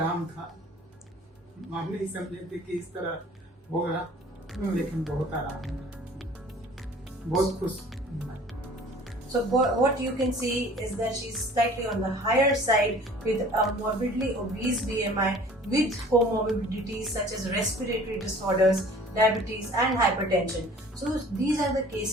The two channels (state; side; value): normal; both; correlation 0.49